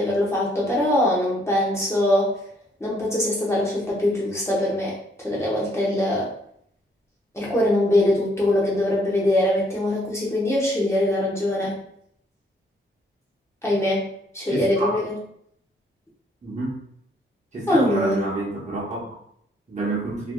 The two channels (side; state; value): both; normal; correlation 0.67